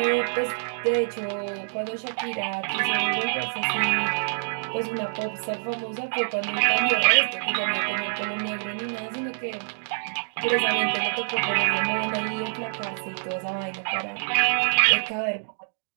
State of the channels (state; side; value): silent; left; digital silence